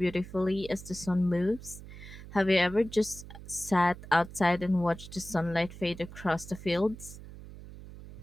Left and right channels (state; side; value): noise; right; hum, 15 dB below the sound